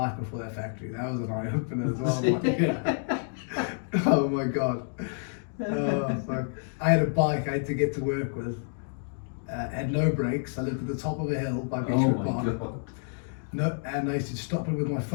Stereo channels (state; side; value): silent; right; digital silence